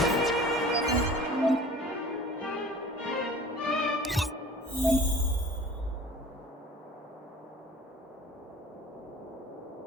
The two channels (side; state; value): both; normal; correlation 0.44